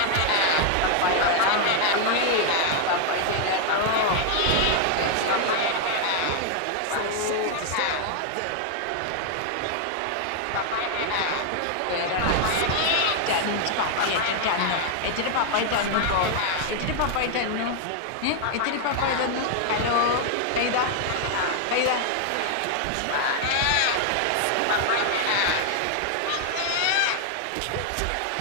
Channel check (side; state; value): both; different; correlation 0.00